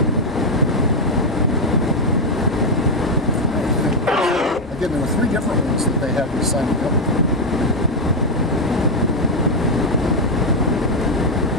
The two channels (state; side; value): normal; both; correlation 0.04